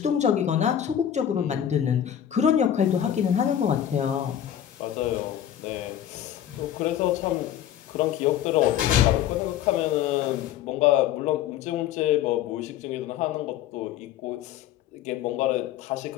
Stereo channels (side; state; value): right; quieter; 10.5 dB